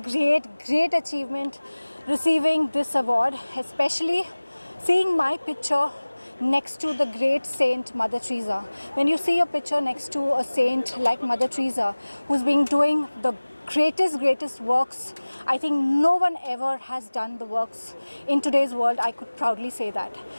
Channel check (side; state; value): both; inverted; correlation -1.00